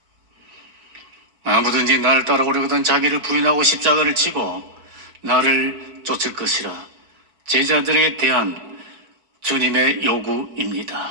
아무든지 나를 따라오려거든 자기를 부인하고 십자가를 지고 나를 쫓을 것이라. 제자들에게 대한 주님의 요구입니다.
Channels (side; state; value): left; late; 4.5 ms